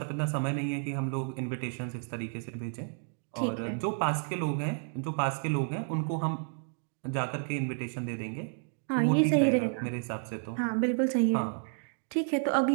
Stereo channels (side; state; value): left; silent; 57 dB below the other